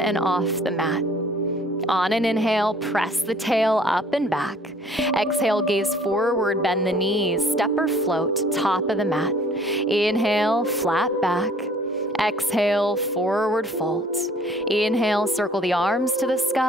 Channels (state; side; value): normal; both; correlation 0.55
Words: off the mat. On an inhale, press the tail up and back. Exhale, gaze forward, bend the knees, step or float, top of the mat. Inhale, flat back. Exhale, forward fold. Inhale, circle the arms to the